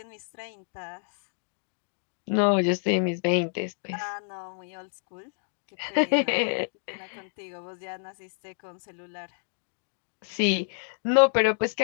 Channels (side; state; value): right; silent; digital silence